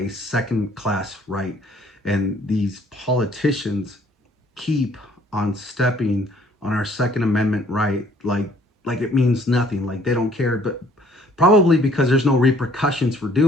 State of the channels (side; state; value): both; normal; correlation 0.60